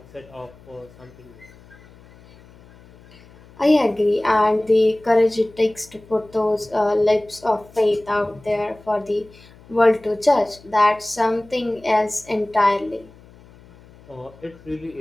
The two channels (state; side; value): noise; left; hum, 24 dB below the sound